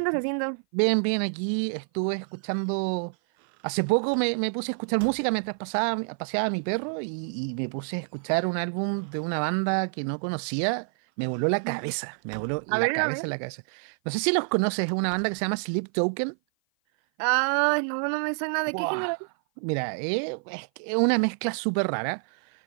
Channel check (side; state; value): left; silent; 55 dB below the other